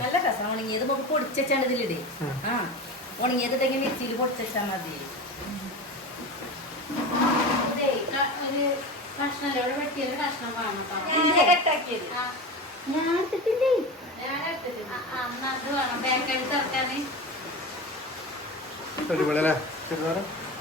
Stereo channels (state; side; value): normal; both; correlation 0.27